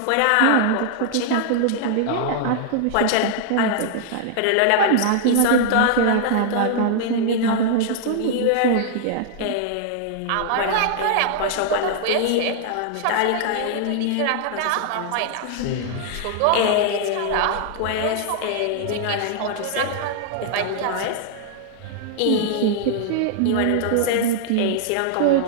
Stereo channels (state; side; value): different; both; correlation -0.01